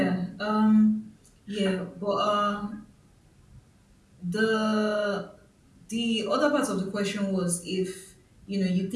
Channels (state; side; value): identical; both; correlation 1.00